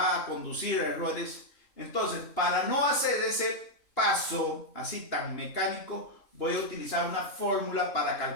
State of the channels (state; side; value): late; right; 2.9 ms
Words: a conducir a errores. Entonces, para no hacer ese paso así tan mecánico, voy a utilizar una fórmula para